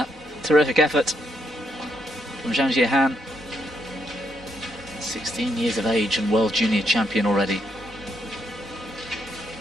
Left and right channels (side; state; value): both; normal; correlation 0.77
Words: Terrific effort from Zhang Jihan. 16 years of age and World Junior Champion already.